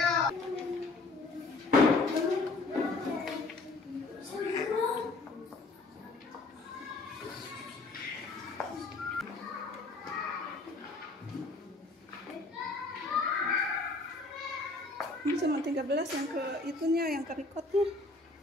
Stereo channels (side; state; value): right; quieter; 3.3 dB